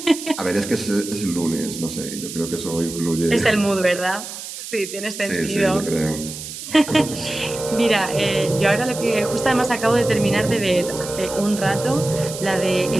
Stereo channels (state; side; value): noise; right; hiss, 10 dB below the sound